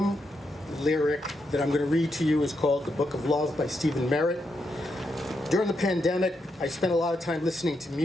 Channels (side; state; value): both; normal; correlation 0.82